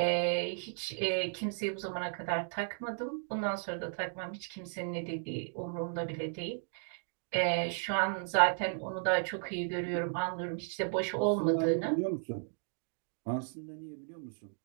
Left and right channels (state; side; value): silent; left; 55 dB below the other